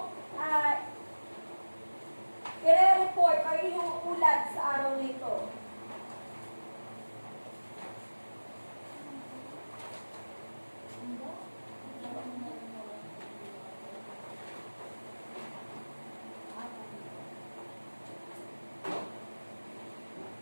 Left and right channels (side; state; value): both; inverted; correlation -1.00